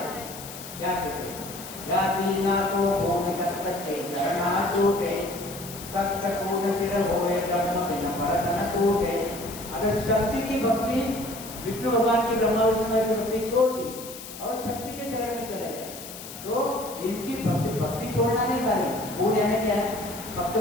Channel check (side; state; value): left; noise; hiss, 13 dB below the sound